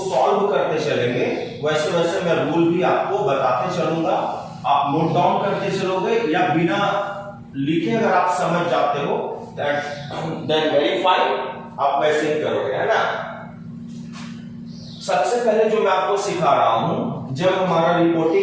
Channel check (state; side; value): identical; both; correlation 1.00